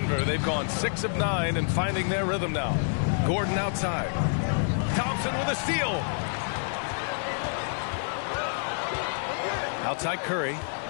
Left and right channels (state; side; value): silent; right; 59 dB below the other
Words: they've gone 6 of 9 and finding their rhythm now. Gordon outside. Thompson with a steal. Outside Curry.